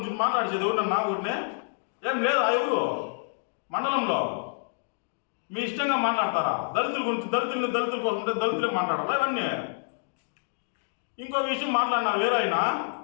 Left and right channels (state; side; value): silent; right; digital silence